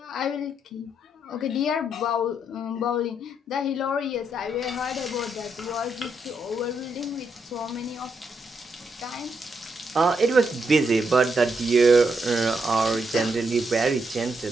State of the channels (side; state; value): both; normal; correlation 0.79